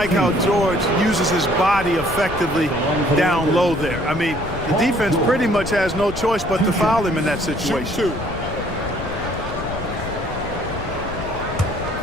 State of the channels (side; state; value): left; noise; rumble, 10 dB below the sound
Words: how George uses his body effectively down low there. I mean, the defense pretty much has no choice but to foul him in that situation.